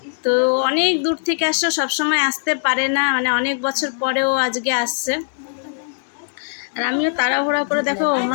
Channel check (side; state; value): right; silent; digital silence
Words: তো অনেক দূর থেকে আসছে, সবসময় আসতে পারে না, মানে অনেক বছর পরেও আজকে আসছে। আর আমিও তাড়াহুড়া করে দেখো